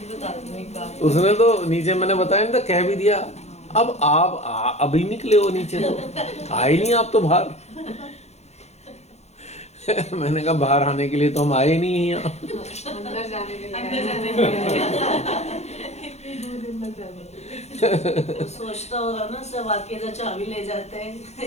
उसने तो नीचे मैंने बताया नहीं था, कह भी दिया अब आप अभी निकले हो नीचे, तो आए नहीं आप तो बाहर। मैंने कहा बाहर आने के लिए तो हम आए नहीं हैं यहाँ, अंदर जाने के लिए सोचता होगा ना सब आके तो चाबी ले जाते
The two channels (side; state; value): right; late; 0.32 ms